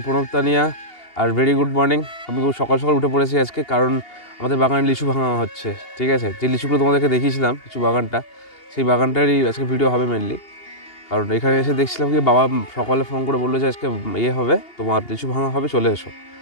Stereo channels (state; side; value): late; right; 2.8 ms